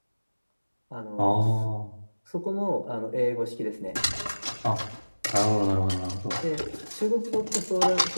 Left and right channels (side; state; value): both; inverted; correlation -1.00